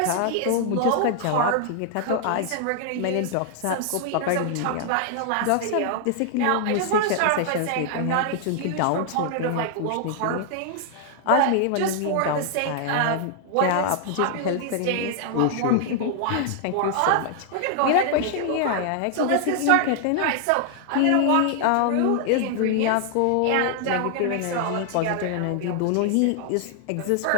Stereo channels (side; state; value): both; different; correlation 0.00